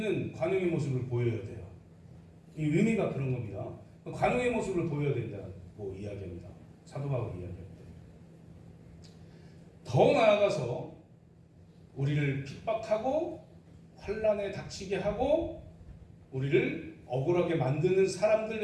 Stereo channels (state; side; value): identical; both; correlation 1.00